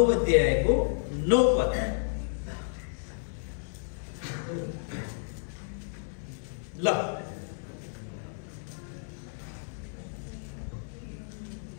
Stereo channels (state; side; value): silent; right; 57 dB below the other